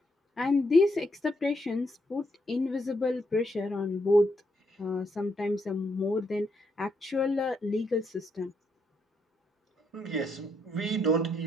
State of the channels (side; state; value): both; normal; correlation 0.77